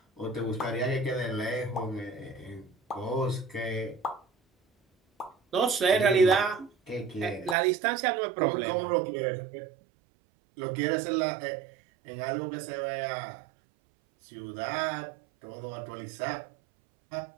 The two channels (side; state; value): left; drops out; at 7.6 s